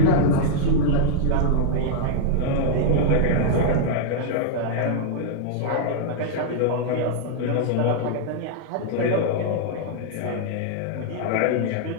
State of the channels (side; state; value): both; different; correlation -0.01